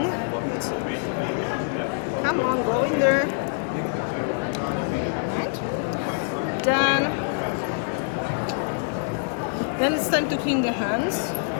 Come on, go in there. Right. Then it's time to clean the hands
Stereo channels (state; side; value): silent; right; digital silence